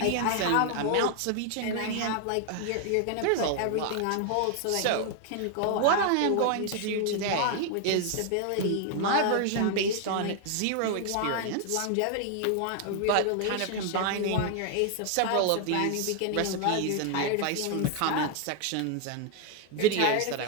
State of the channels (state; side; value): different; both; correlation 0.00